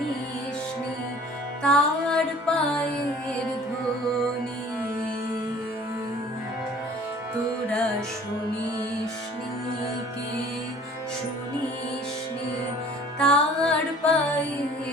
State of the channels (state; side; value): normal; both; correlation 0.49